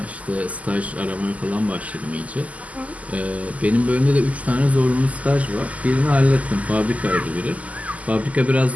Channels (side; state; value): left; late; 0.072 ms